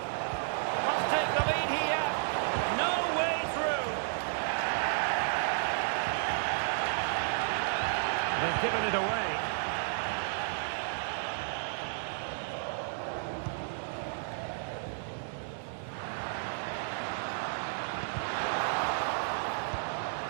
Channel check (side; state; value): left; silent; digital silence